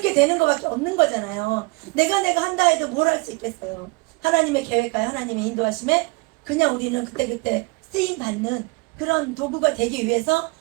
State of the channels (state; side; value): quieter; left; 27.0 dB